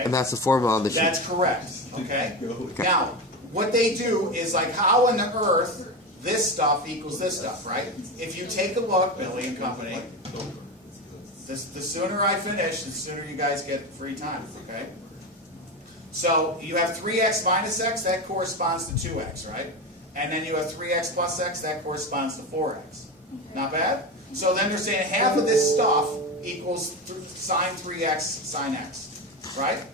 And that's the formula on the sheet. That's correct, okay? Now, what they do is like how on the earth this stuff equals this stuff, right? If you take a look, Billy and company, the sooner I finish, the sooner you guys get free time, okay? So you have 3x minus x, that corresponds to 2x, right? And then you have 3x plus x, that corresponds to 4x. Not bad? So then they're saying half of this stuff equals sine 3x sine x, right?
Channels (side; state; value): both; normal; correlation 0.20